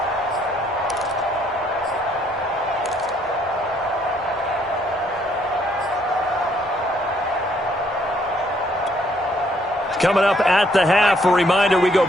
Coming up at the half, a reminder, we go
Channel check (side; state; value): both; normal; correlation 0.67